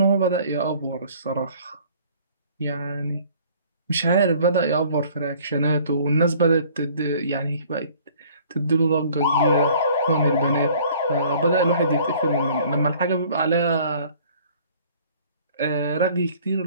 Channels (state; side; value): inverted; both; correlation -0.54